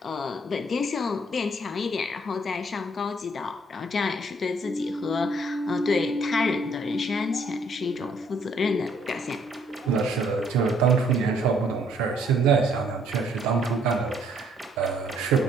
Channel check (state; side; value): normal; both; correlation 0.65